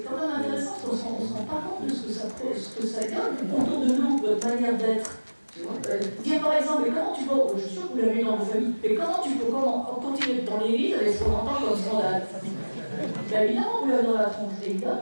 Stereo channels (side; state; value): both; inverted; correlation -1.00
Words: quand même intéressant, parce qu'on ne se rend pas compte de ce que ça donne autour de nous, votre manière d'être. Dire par exemple, mais comment tu peux, je suis sûr que vous l'avez dans vos familles, mais comment tu peux continuer dans l'église avec ce qu'on entend comme scandale? Ben, évidemment, vous l'avez dans la tronche,